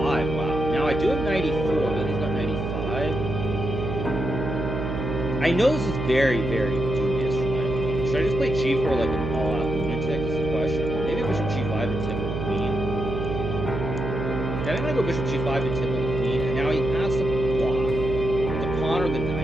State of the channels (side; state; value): right; noise; hum, 3 dB below the sound